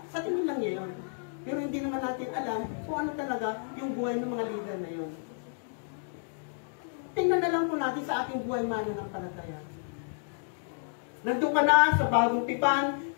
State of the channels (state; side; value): silent; right; digital silence